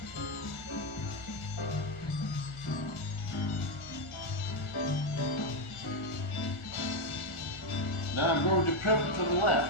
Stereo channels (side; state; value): right; late; 1.4 ms